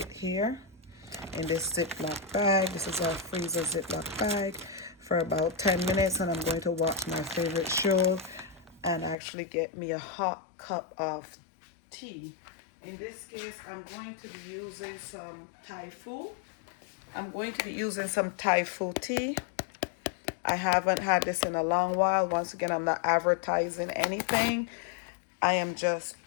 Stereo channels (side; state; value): right; drops out; at 9.2 s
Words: here in this Ziploc bag. This is our freezer Ziploc bag for about 10 minutes, and I'm going to watch my favorite show and actually get me a hot cup of tea. In this case, I'm going to be using some Thai food. I'm going to be using some Thai food tea. I haven't had this in a long while. Once again, I'm not advertising anything. I am just